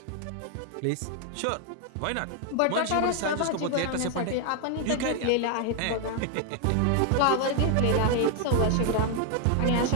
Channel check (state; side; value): different; both; correlation 0.00